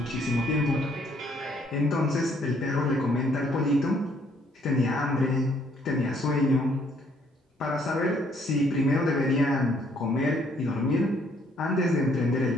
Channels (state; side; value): normal; both; correlation 0.66